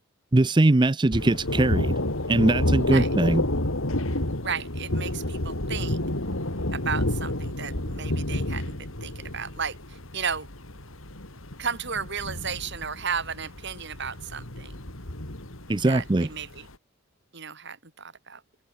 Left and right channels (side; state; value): both; normal; correlation 0.59